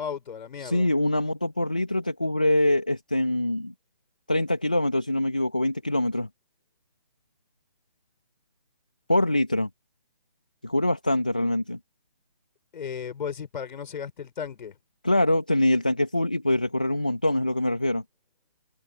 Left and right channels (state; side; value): inverted; both; correlation -0.92